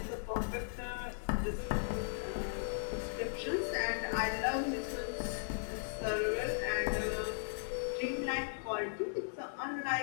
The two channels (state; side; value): silent; right; digital silence